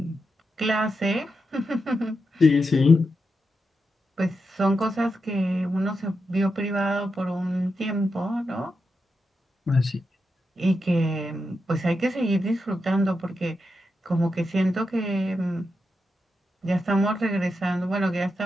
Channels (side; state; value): both; normal; correlation 0.87